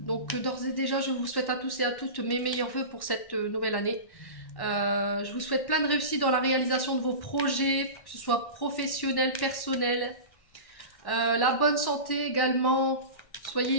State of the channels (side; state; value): right; late; 1.1 ms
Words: d'ores et déjà, je vous souhaite à tous et à toutes mes meilleurs vœux pour cette nouvelle année. Je vous souhaite plein de réussite dans la réalisation de vos projets, que ce soit professionnel, personnel, la bonne santé également. Soyez